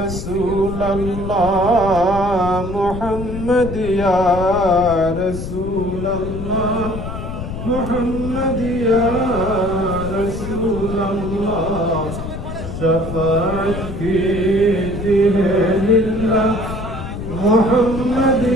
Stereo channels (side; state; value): left; noise; rumble, 7 dB below the sound